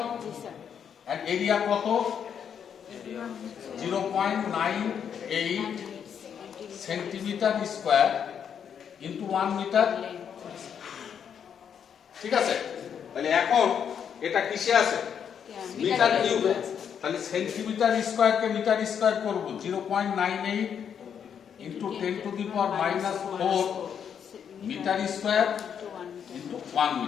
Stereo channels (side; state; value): right; quieter; 7.9 dB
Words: আর এরিয়া কত? 0.98 সেন্টিমিটার স্কয়ার ইনটু 1 মিটার। ঠিক আছে? তাহলে এখন এটা কিসে আছে? মিটার কিউবে। তাহলে সেন্টিমিটার স্কয়ারকে মিটার স্কয়ার করব, 0.98 into 10 to the power -4 metre square into 1